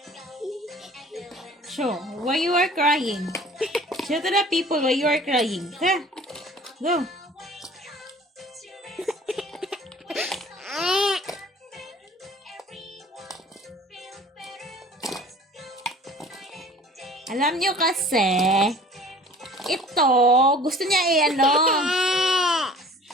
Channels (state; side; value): normal; both; correlation 0.47